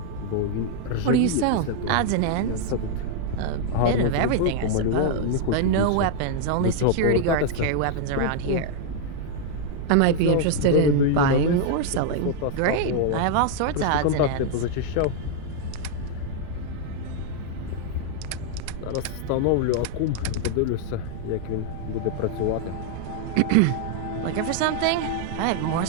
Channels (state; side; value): different; both; correlation 0.00